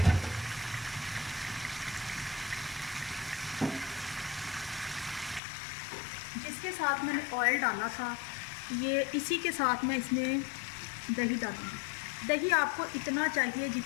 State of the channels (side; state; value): right; drops out; at 5.4 s